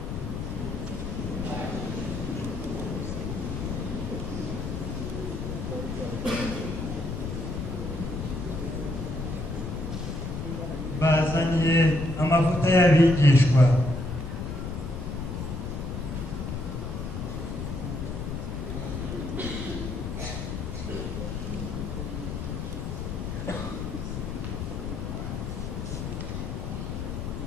Bazaniye amavuta y'abigishwa.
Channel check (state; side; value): noise; left; rumble, 4 dB below the sound